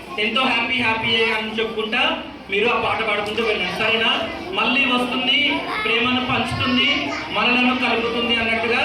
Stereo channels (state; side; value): identical; both; correlation 1.00